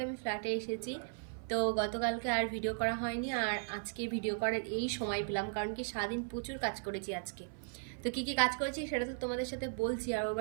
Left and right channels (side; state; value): left; silent; 53 dB below the other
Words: আমি ফ্ল্যাটে এসেছি, তো গতকালকে আর ভিডিও করা হয়নি, আর আজকে ভিডিও করার এই সময় পেলাম, কারণ কি সারাদিন প্রচুর কাজ করেছি আজকে। তো কী কী কাজ করেছি সেটা তো তোমাদের সাথে বলছি। আর ওর